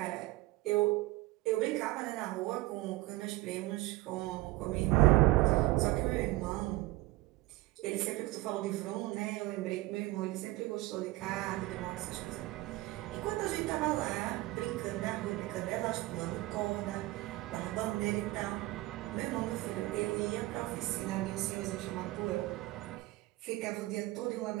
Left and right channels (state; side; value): quieter; left; 19.6 dB